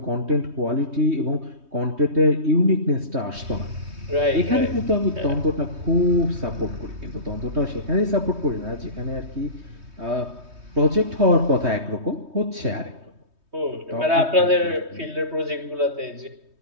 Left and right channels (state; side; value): late; left; 3.2 ms